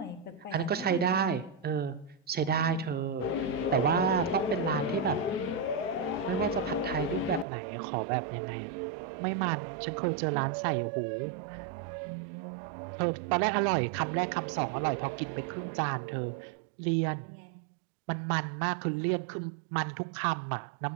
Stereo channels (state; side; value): drops out; left; at 7.5 s